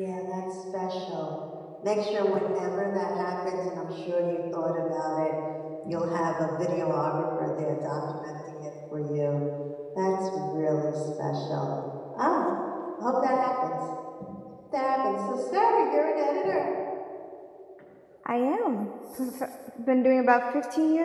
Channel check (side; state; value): both; identical; correlation 1.00